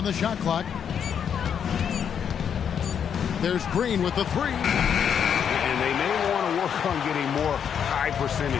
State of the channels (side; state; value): right; quieter; 7.9 dB